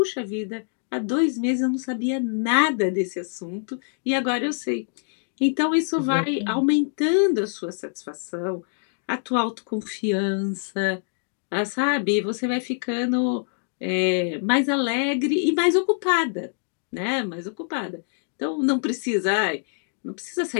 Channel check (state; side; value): silent; right; 62 dB below the other